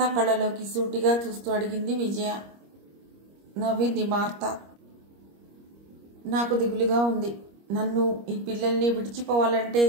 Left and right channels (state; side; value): late; left; 25 ms